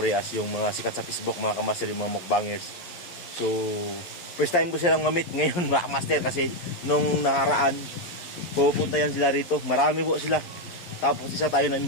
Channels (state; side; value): late; right; 11 ms